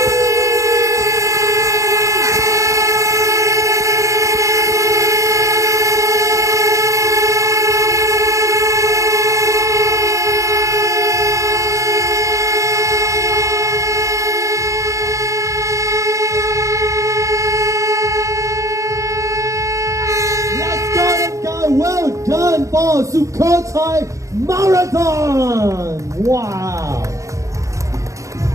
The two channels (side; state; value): left; late; 0.15 ms